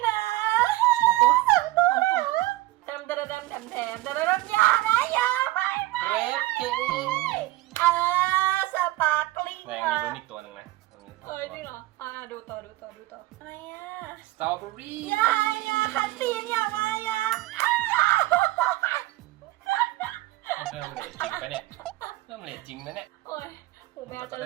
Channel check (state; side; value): quieter; left; 17.7 dB